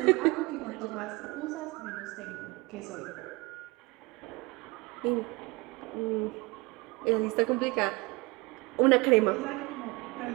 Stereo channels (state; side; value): quieter; left; 24.8 dB